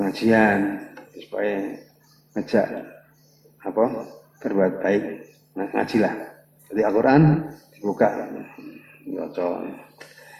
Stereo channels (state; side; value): identical; both; correlation 1.00